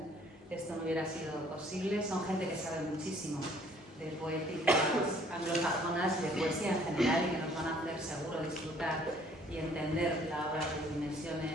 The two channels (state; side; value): normal; both; correlation 0.59